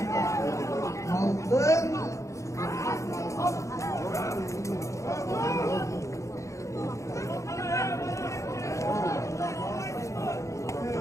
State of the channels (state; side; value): late; right; 0.15 ms